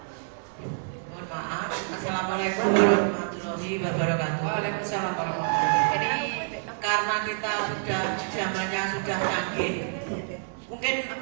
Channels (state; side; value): silent; left; digital silence